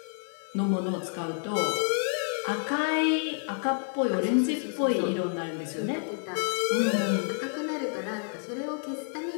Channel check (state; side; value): silent; right; 55 dB below the other